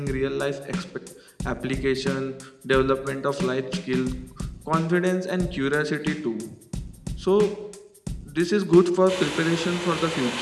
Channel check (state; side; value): identical; both; correlation 1.00